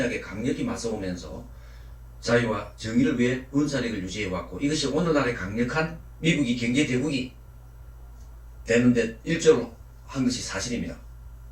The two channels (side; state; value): both; identical; correlation 1.00